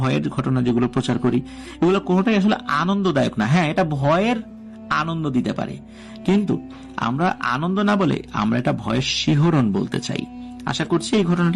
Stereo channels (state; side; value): identical; both; correlation 1.00